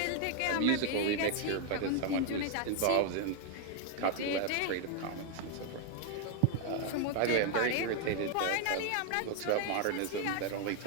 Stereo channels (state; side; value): different; both; correlation 0.00